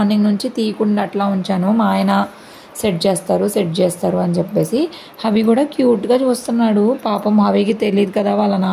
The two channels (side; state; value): both; identical; correlation 1.00